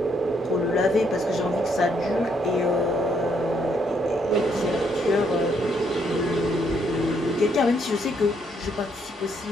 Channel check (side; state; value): both; normal; correlation 0.73